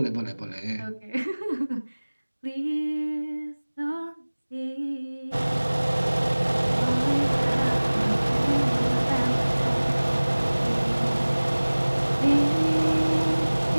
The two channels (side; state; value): both; inverted; correlation -1.00